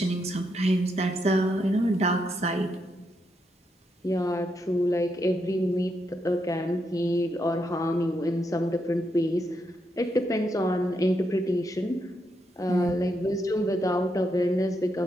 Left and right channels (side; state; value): both; normal; correlation 0.80